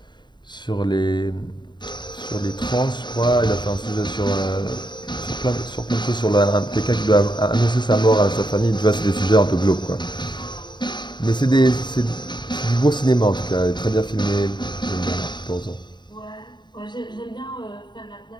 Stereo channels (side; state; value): right; late; 0.22 ms